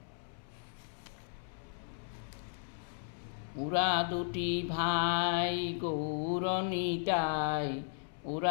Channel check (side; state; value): right; silent; 54 dB below the other